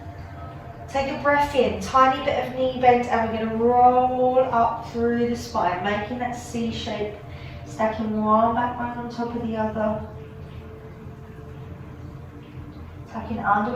Take a breath in, tiny bit of knee bend, and we're going to roll up through the spine, making that C shape, stacking one back bone on top of the other. Tucking under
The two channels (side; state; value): both; identical; correlation 1.00